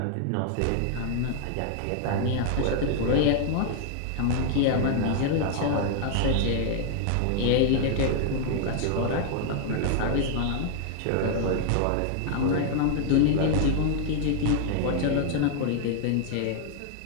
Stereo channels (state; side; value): different; both; correlation 0.00